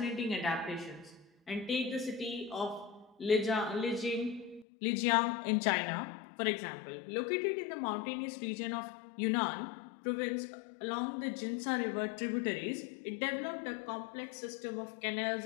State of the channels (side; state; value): right; drops out; at 4.7 s